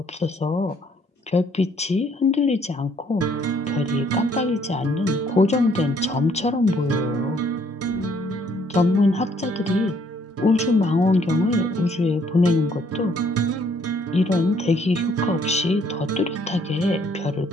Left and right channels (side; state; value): both; normal; correlation 0.65